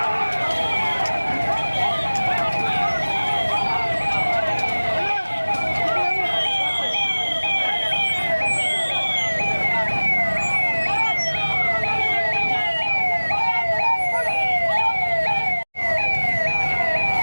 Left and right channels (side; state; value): both; inverted; correlation -1.00